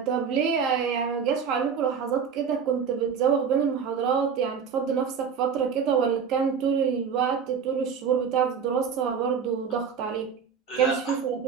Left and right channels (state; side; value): quieter; left; 6.6 dB